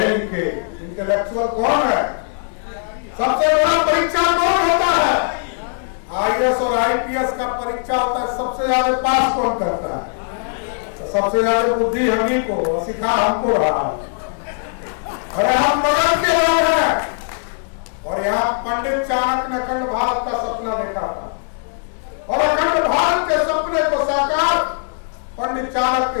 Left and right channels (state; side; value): silent; right; 66 dB below the other